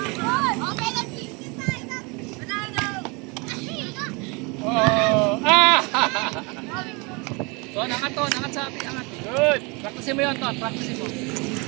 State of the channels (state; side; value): quieter; left; 28.9 dB